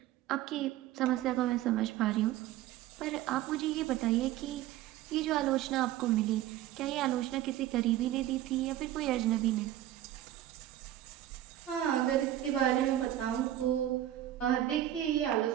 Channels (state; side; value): quieter; left; 13.2 dB